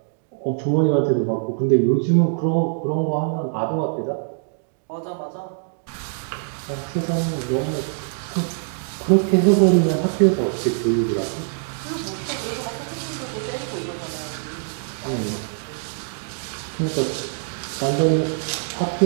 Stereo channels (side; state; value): left; silent; digital silence